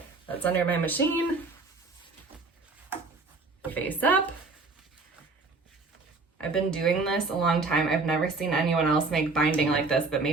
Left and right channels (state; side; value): quieter; left; 3.9 dB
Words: that's under my machine, face up. I've been doing this a long time. I've never seen anyone else make binding like this, but